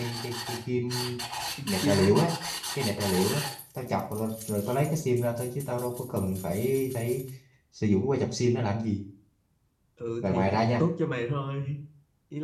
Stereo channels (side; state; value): both; identical; correlation 1.00